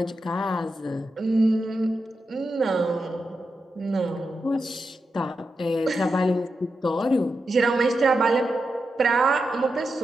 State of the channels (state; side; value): normal; both; correlation 0.88